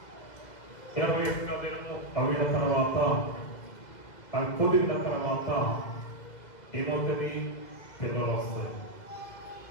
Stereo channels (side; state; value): right; late; 2.0 ms